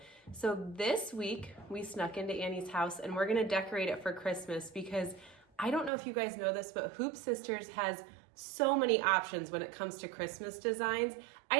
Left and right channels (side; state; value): left; drops out; at 5.9 s